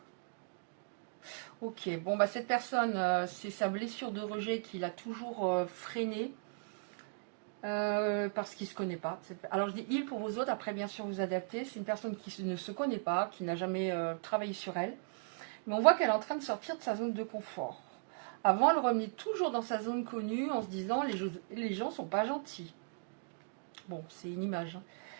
Ok, bon, bah cette personne, c'est sa blessure de rejet qui l'a toujours freiné parce qu'il ne se connaît pas. Alors je dis il pour vous autres, après bien sûr vous adaptez. C'est une personne qui ne se connaît pas, qui n'a jamais travaillé sur elle. Mais on voit qu'elle est en train de sortir de sa zone de confort. Avant, elle revenait toujours dans sa zone connue en se disant les gens sont pas gentils. Bon, c'est une image. Hein.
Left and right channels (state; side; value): silent; left; digital silence